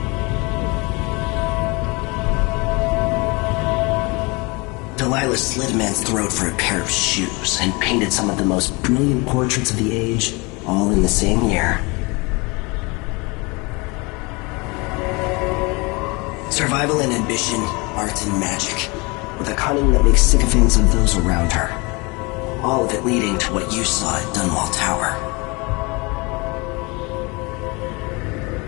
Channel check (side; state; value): right; quieter; 27.2 dB